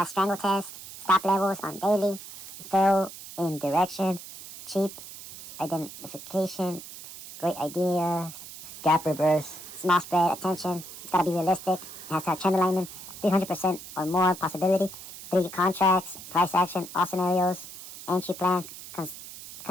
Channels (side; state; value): right; noise; hiss, 14 dB below the sound